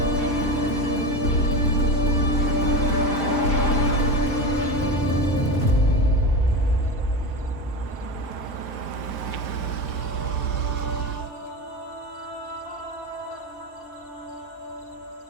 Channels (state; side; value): late; right; 5.1 ms